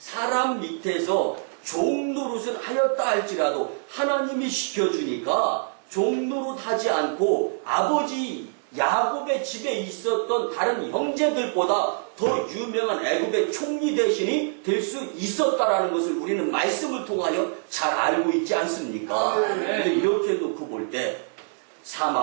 밑에서 종노릇을 하였다 할지라도 하나님이 시켜주니까 종노릇 하지 않고 아버지 야곱의 집에 있었던 다른 형제들보다 더 유명한 애굽의 총리 대신이 될 수 있었다라는 것을 우리는 말씀을 통하여 잘 알고 있지 않습니까? 근데 이렇게 놓고 볼 때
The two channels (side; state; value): left; silent; digital silence